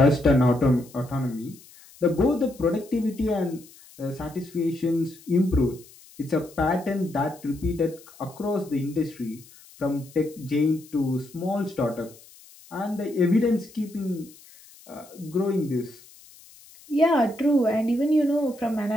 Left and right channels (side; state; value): left; noise; hiss, 23 dB below the sound